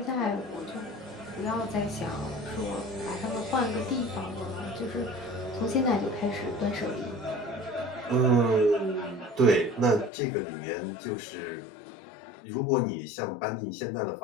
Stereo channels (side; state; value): right; drops out; at 10.1 s